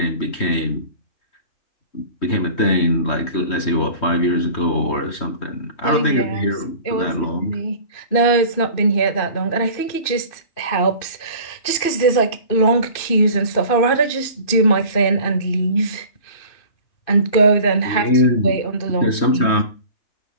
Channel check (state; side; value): late; right; 2.6 ms